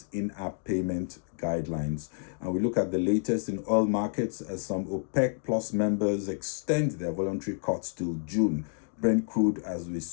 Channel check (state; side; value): silent; right; 58 dB below the other